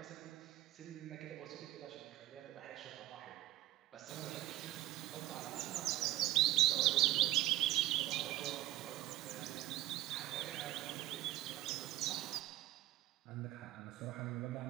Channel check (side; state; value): left; quieter; 15.3 dB